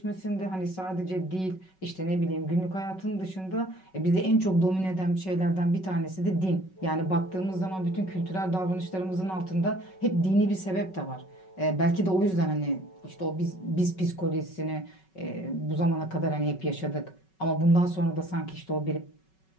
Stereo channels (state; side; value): late; right; 5.3 ms